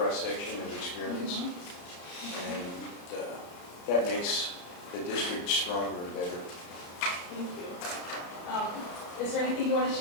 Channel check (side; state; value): right; late; 34 ms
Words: of experience, and that makes the district stronger and better. Thank you. Is there anything you want to